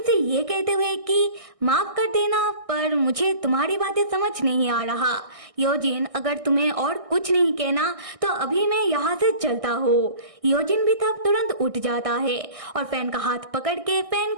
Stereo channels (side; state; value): left; late; 1.6 ms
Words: से ये कहते हुए कि माफ कर देना पर मुझे तुम्हारी बातें समझ नहीं आ रहा। योजिन अगर तुम्हें और कुछ नहीं कहना तो अभी मैं यहाँ से चलता हूँ। योजिन भी तब तुरंत उठ जाता है और फैन का हाथ पकड़ के फैन